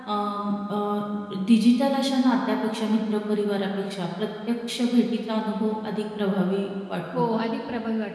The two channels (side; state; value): both; identical; correlation 1.00